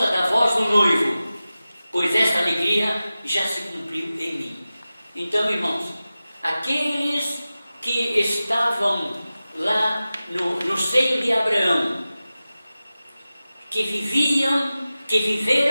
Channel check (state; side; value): inverted; both; correlation -0.95